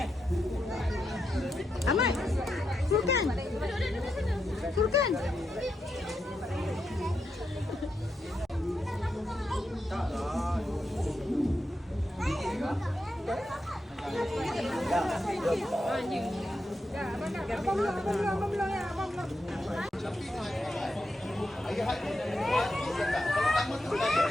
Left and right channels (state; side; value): normal; both; correlation 0.86